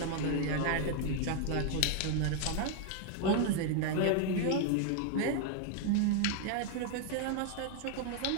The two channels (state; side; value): different; both; correlation 0.00